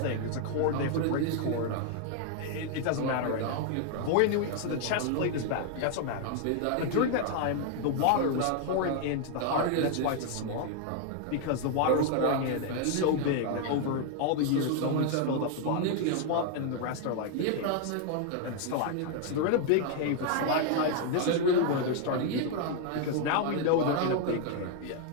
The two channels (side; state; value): both; different; correlation 0.00